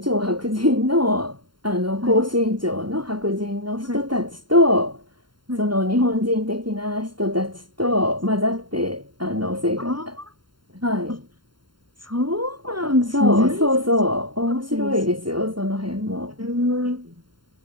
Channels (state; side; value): late; left; 0.72 ms